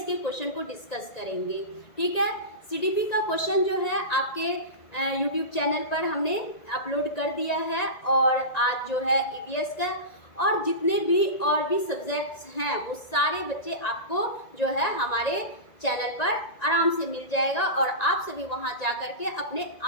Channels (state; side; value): late; right; 1.9 ms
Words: के क्वेश्चन को डिस्कस करेंगे। ठीक है, सीडीपी का क्वेश्चन जो है आपके यूट्यूब चैनल पर हमने अपलोड कर दिया है और आज जो है ईवीएस का और जितने भी और भी सब्जेक्ट्स हैं वो सारे बच्चे आपको जो है हमारे चैनल पर आराम से मिल जाएगा और आप सभी वहां जा कर के अपने